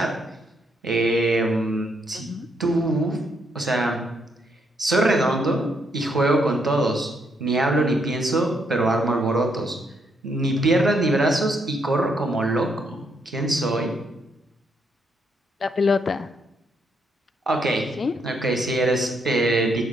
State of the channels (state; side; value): normal; both; correlation 0.75